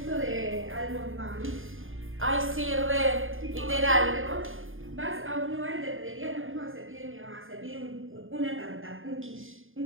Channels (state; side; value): late; left; 0.59 ms